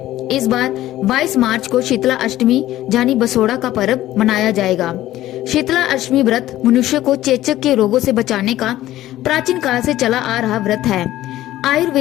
इस बार 22 मार्च को शीतला अष्टमी यानी बसोड़ा का पर्व मनाया जाएगा। शीतला अष्टमी व्रत मनुष्य को चेचक के रोगों से बचाने का प्राचीन काल से चला आ रहा व्रत है।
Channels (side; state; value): right; quieter; 14.6 dB